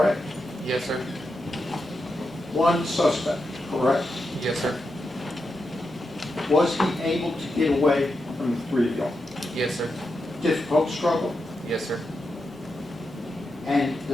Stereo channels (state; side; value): normal; both; correlation 0.87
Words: Yes, sir. 1 suspect, correct? Yes, sir. Was he able to get away from the 3 of y'all? Yes, sir. Difficult struggle? Yes, sir. And